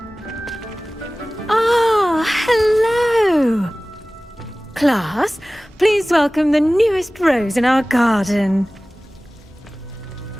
Ah, hello. Class, please welcome the newest rose in our garden.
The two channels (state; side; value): normal; both; correlation 0.98